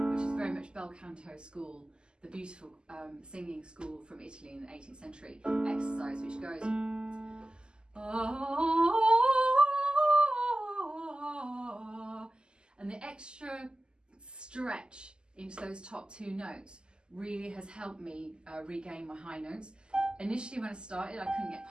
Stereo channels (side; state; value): left; late; 0.047 ms